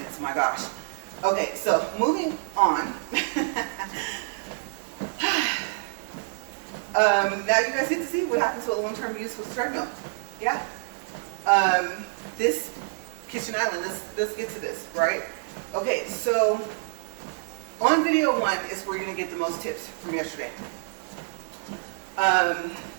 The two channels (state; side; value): silent; left; digital silence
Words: My gosh. Okay, so moving on. Now you guys get to see what happens with long-term use with the treadmill. Yeah. This kitchen island, let's get to this, right? Okay, so on video 1 is where you're gonna get the most tips from yesterday.